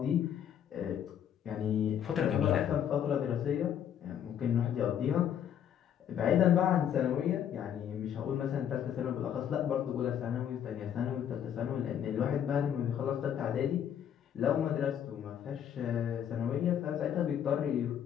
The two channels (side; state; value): right; quieter; 9.4 dB